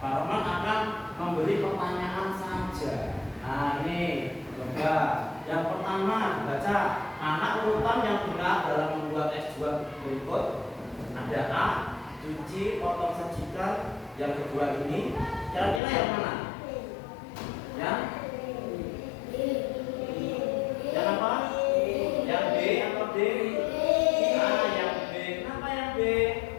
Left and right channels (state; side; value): drops out; right; at 15.8 s